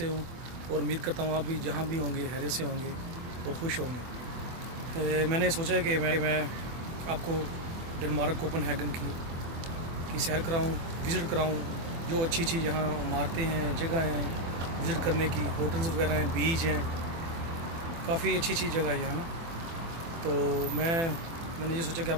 हूँ और उम्मीद करता हूँ आप भी जहाँ भी होंगे हैरियत से होंगे और खुश होंगे। मैंने सोचा है कि मैं आपको डेनमार्क कोपनहेगन की सैर कराऊँ, विज़िट कराऊँ। जो अच्छी अच्छी यहाँ इमारतें हैं, जगह हैं विज़िट करने की, होटल्स वगैरह हैं, बीच हैं, काफ़ी अच्छी जगह है यहाँ ना। तो मैंने ये सोचा कि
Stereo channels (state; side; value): late; left; 24 ms